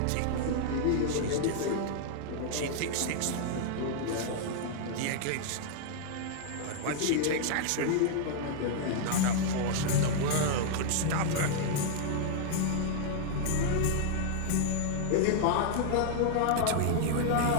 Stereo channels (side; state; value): both; different; correlation -0.01